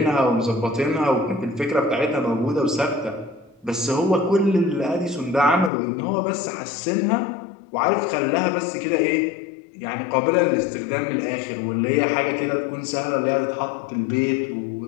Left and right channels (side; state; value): right; drops out; at 5.7 s